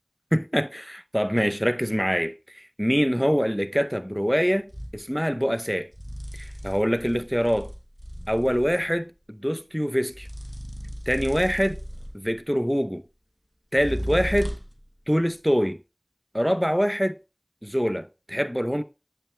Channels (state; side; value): identical; both; correlation 1.00